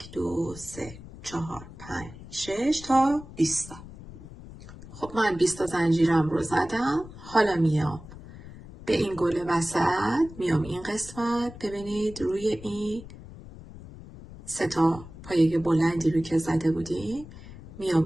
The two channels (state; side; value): noise; left; rumble, 16 dB below the sound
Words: 2 3 4 5 6 تا 20 تا. خب من 20 تا زنجیرم رو زدم. حالا میام به این گل وسط، میام این قسمت، ببینید روی این 3 تا پایه بلندی رو که زده بودیم،